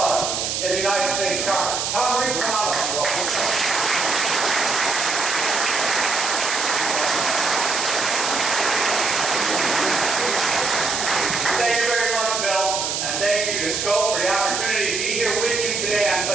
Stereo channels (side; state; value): right; noise; hiss, 1 dB below the sound